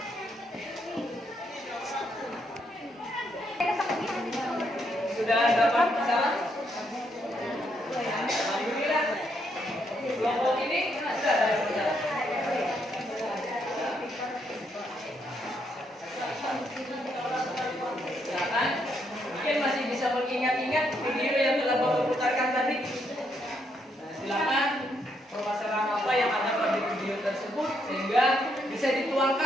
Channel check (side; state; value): both; normal; correlation 0.76